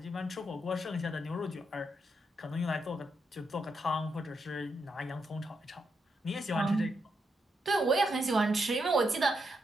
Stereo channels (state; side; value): normal; both; correlation 0.81